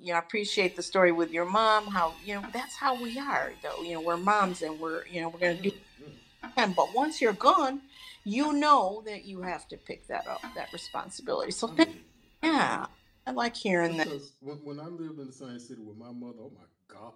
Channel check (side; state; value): both; identical; correlation 1.00